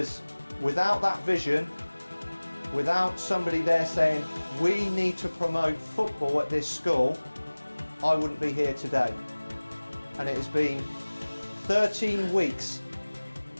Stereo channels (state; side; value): inverted; both; correlation -1.00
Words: without that vision, without somebody there saying, we need to promote football at this school, I wouldn't be here today. And it has been 13 weeks